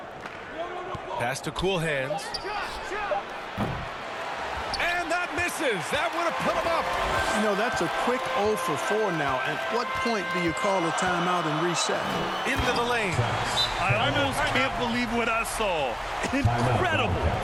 Pass to Cool Hands. And that misses. That would have put him up. You know, that's a quick 0 for 4 now. At what point do you call a timeout and reset? Into the lane. I almost can't believe what I saw. Incredible.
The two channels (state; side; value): identical; both; correlation 1.00